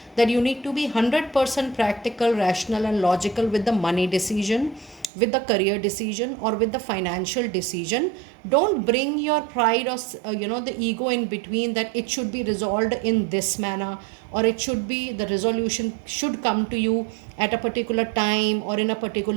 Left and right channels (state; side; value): drops out; left; at 5.1 s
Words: that you need to be 100% practical, rational and logical with the money decision, with the career decision or with the financial decision. Don't bring your pride or the ego in between, that it should be resolved in this manner, or it should be, the resolution should come to you at a particular time or in a